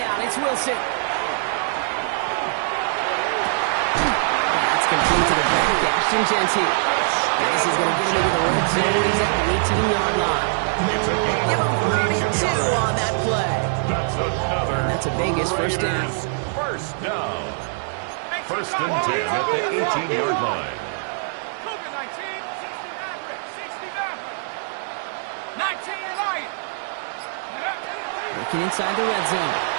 it's Wilson. That's complete to the back, Ashton Genty. This is going to get him into the red zone. He's at the 18-yard line. Give him 32 on that play. And that's a Vegas first down. First down. First and 10 at the 18-yard line. Working inside the red zone.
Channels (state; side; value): silent; left; 62 dB below the other